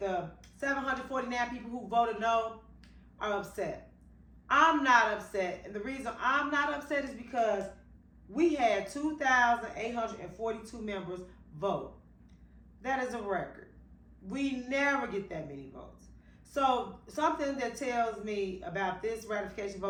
749 people who voted no are upset. I'm not upset, and the reason I'm not upset is because we had 2,842 members vote. That is a record. We never get that many votes. So something that tells me about this ratification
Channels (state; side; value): identical; both; correlation 1.00